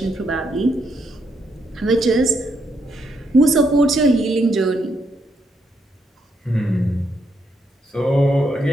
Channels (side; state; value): both; normal; correlation 0.77